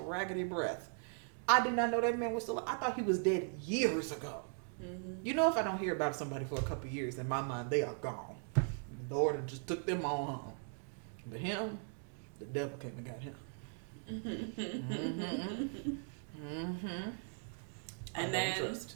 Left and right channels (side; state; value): left; silent; 52 dB below the other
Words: raggedy breath. I did not know that man was still. I thought he was dead years ago. Mm-hmm. You know, if I don't hear about somebody for a couple of years, in my mind they are gone. The Lord just took them on home. But him, the devil came and got him. And then